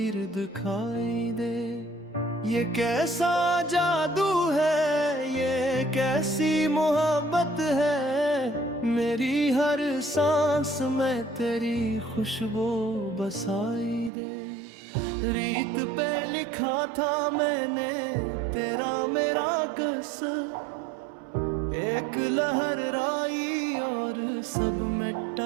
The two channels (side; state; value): left; drops out; at 14.1 s